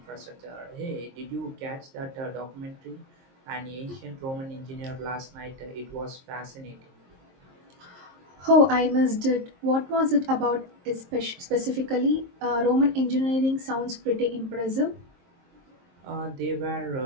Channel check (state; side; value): late; left; 23 ms